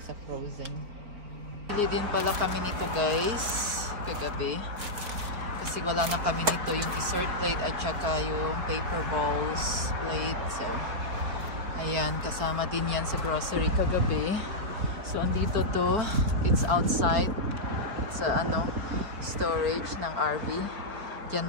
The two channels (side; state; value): left; late; 4.2 ms